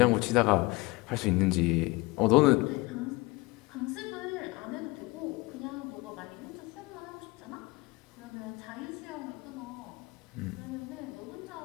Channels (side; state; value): right; quieter; 23.4 dB